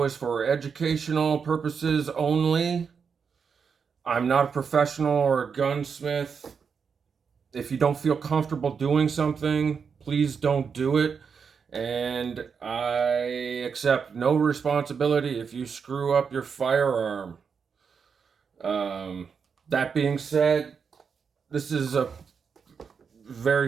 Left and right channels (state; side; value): quieter; left; 6.1 dB